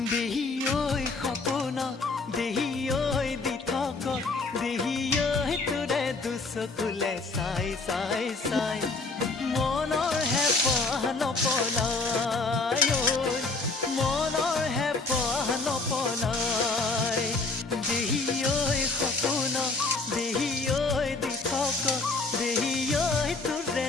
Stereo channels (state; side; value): quieter; right; 3.7 dB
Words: দেহি ঐ সপোন দেহি ঐ দি থক দেহি ঐ তোৰে দুচকুলে চাই চাই চাই মনৰ হেঁপাহ নপলাই মনৰ হেঁপাহ নপলাই দেহি ঐ সপোন দেহি ঐ দি থক দেহি ঐ তোৰে